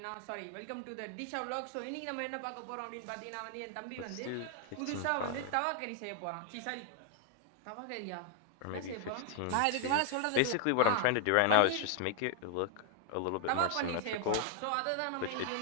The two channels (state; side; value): different; both; correlation 0.00